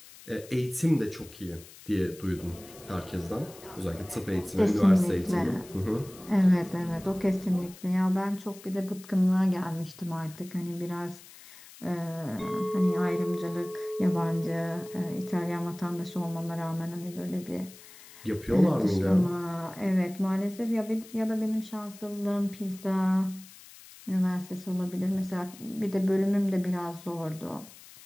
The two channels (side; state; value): left; noise; hiss, 20 dB below the sound